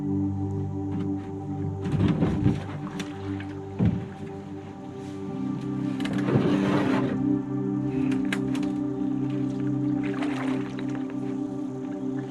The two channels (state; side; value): identical; both; correlation 1.00